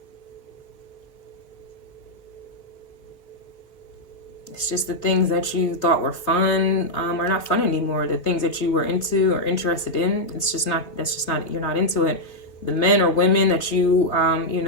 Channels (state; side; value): late; right; 3.4 ms